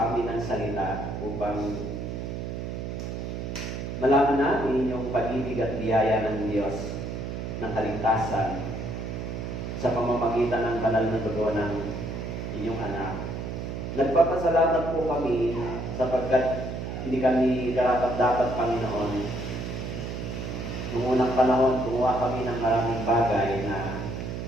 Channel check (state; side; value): noise; right; hum, 5 dB below the sound